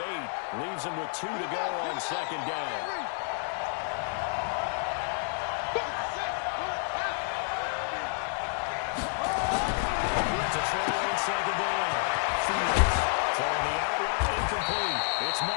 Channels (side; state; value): right; silent; 57 dB below the other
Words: 8 leaves him with 2 to go on 2nd down. It's